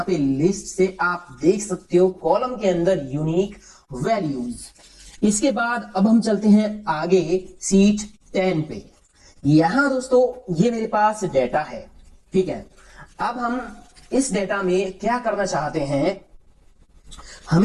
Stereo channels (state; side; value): identical; both; correlation 1.00